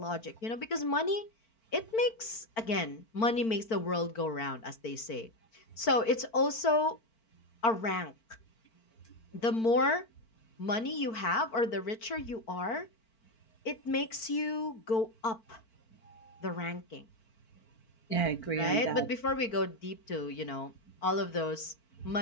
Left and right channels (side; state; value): right; late; 4.5 ms